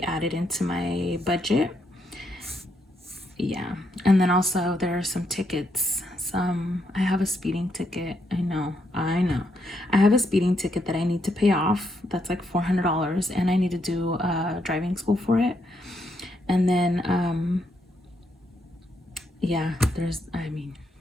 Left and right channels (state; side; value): normal; both; correlation 0.77